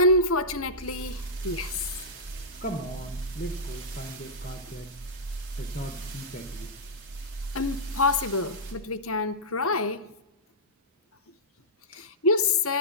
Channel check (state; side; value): normal; both; correlation -0.13